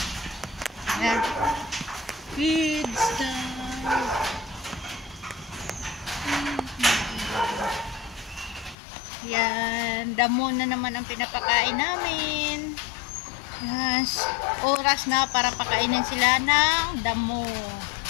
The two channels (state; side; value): drops out; right; at 8.8 s